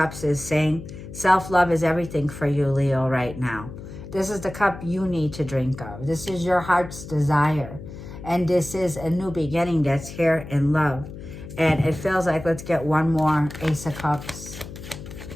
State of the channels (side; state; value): left; noise; hum, 13 dB below the sound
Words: is saying, self-love is everything for you, Leo, right now. This is the cup you need to drink of. This is your heart's desire, and this is a new beginning that's here in love. And it feels like, let's get one more Ace of Cups.